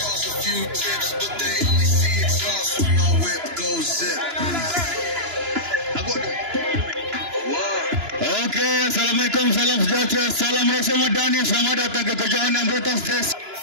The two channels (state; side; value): late; left; 2.9 ms